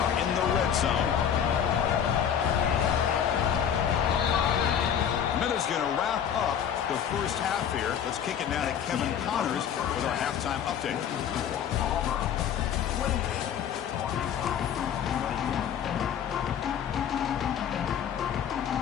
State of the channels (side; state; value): right; quieter; 8.7 dB